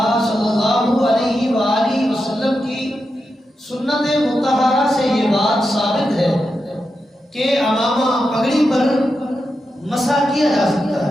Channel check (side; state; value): both; normal; correlation 0.88